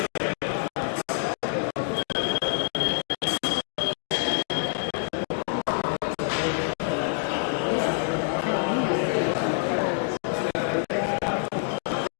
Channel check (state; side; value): silent; right; digital silence